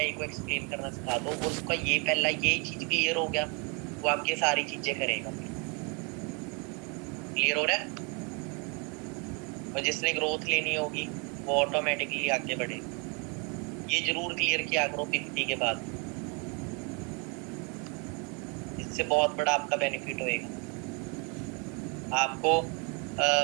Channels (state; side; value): quieter; left; 33.6 dB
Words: को एक्सप्लेन करना सिखा दो, और उसका ये पहला ये चीज क्लियर हो गया, वो आपकी सारी चीजें करेगा। क्लियर हो रहा है? और जिसने ग्रोथ लेनी होगी वो ऑटोमेटिकली आगे बढ़े। ये जरूर क्लियर किया करो 50 के बाद, इससे बहुत बड़ा आपका बेनिफिट होएगा आपको।